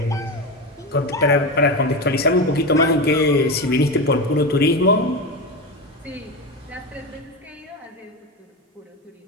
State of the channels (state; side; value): normal; both; correlation 0.18